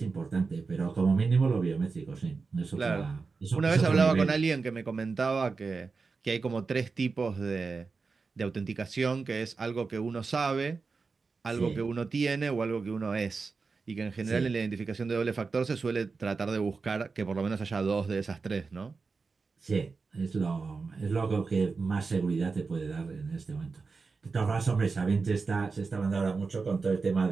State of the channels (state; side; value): quieter; left; 4.5 dB